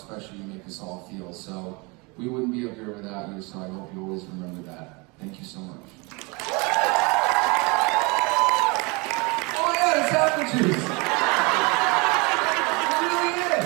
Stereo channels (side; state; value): left; quieter; 28.3 dB